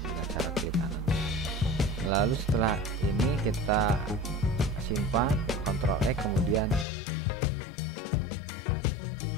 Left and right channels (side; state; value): right; drops out; at 6.9 s